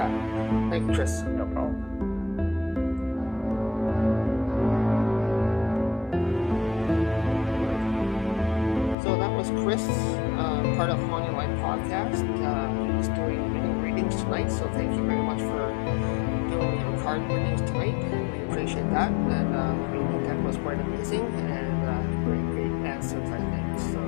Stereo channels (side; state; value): right; drops out; at 9.0 s